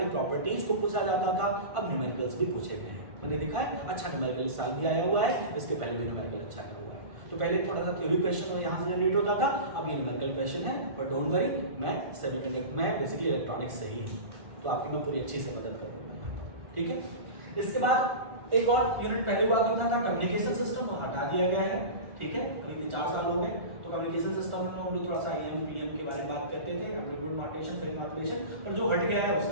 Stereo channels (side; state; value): left; late; 1.5 ms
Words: प्रॉपर्टीज को पूछा जाता था, अब न्यूमेरिकल्स भी पूछे गए हैं। मैंने देखा है अच्छा न्यूमेरिकल इस साल भी आया हुआ है, इसके पहले भी न्यूमेरिकल अच्छा आया हुआ है। तो पहले थोड़ा सा थ्योरी क्वेश्चन यहाँ से जनरेट होता था, अब ये न्यूमेरिकल क्वेश्चन है। बट डोंट वरी, मैं सेमीकंडक्टर में बेसिकली इलेक्ट्रॉनिक्स से ही हूँ, तो आपकी मैं पूरी अच्छी से मदद करूँगा, ठीक है। इसके बाद एक और यूनिट पहले हुआ करता था कम्युनिकेशन सिस्टम, वो हटा दिया गया है, ठीक है। अभी 4 साल हो गए। तो कम्युनिकेशन सिस्टम में हम लोग थोड़ा सा एम पी एम के बारे में बात करते थे, एम्पलीट्यूड मॉड्यूलेशन, फेज मॉड्यूलेशन, पर जो हट गया है